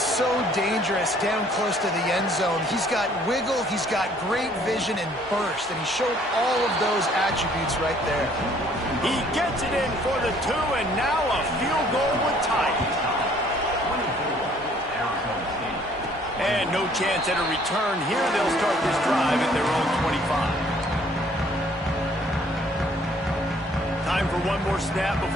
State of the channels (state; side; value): normal; both; correlation 0.60